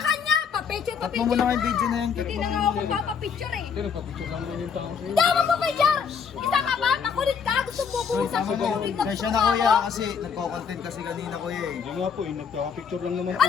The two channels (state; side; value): quieter; right; 6.5 dB